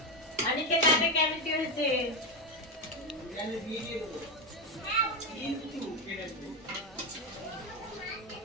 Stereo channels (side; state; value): both; normal; correlation 0.10